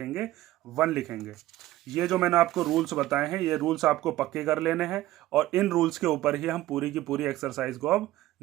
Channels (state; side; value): quieter; left; 15.7 dB